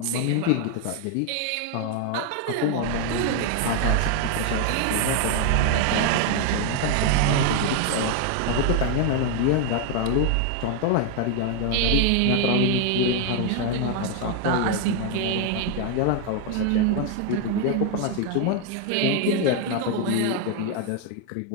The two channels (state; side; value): different; both; correlation 0.00